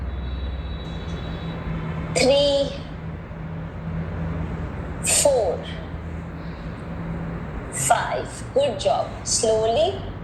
3, 4, 5. Good job. Slowly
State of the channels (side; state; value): both; identical; correlation 1.00